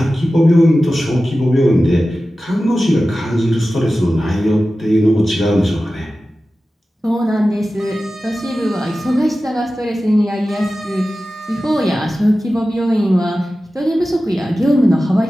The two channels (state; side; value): normal; both; correlation 0.95